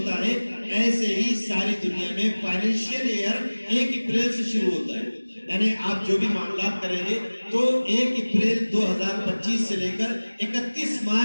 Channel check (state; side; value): inverted; both; correlation -1.00